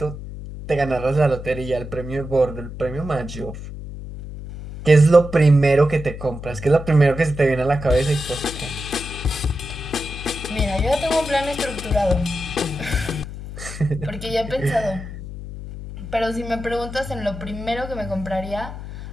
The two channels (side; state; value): left; noise; hum, 10 dB below the sound